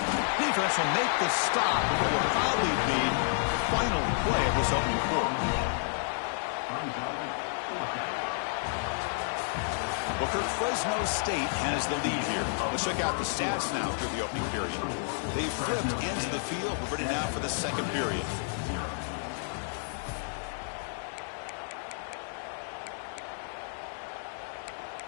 Defense will make the stop, but it will probably be the final play of this opening quarter. Booker, Fresno State has the lead here. Let's check out the stats now through the opening period. They flipped into the field. We're ready now for the second period.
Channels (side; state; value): right; silent; digital silence